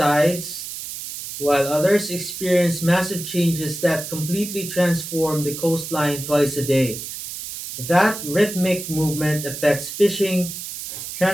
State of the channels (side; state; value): right; noise; hiss, 8 dB below the sound